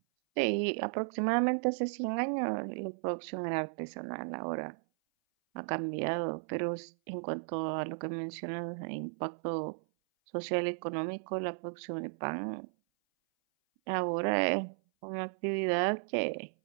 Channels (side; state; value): left; silent; 55 dB below the other